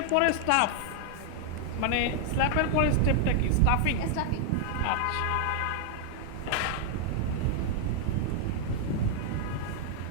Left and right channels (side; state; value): both; different; correlation 0.00